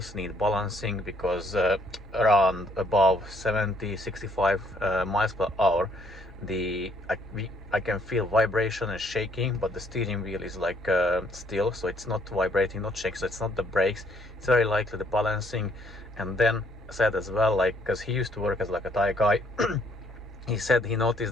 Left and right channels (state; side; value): normal; both; correlation 0.66